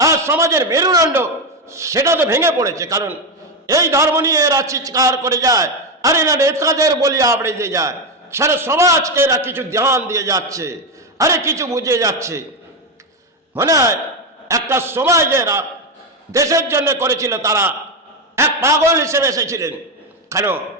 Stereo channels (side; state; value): both; normal; correlation 0.10